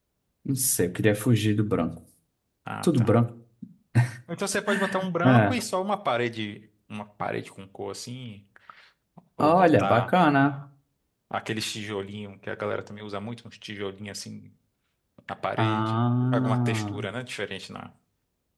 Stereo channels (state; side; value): identical; both; correlation 1.00